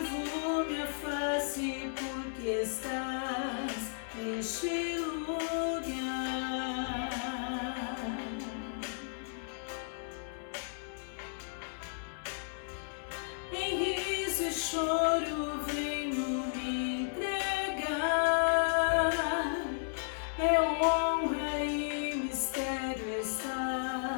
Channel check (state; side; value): silent; right; digital silence